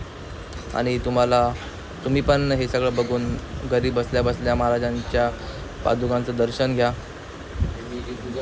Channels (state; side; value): identical; both; correlation 1.00